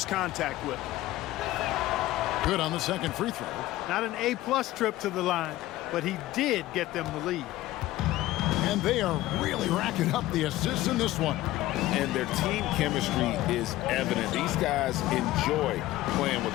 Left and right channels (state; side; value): quieter; right; 16.2 dB